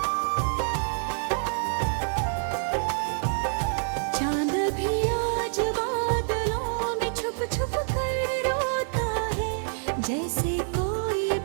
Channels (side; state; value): left; silent; 56 dB below the other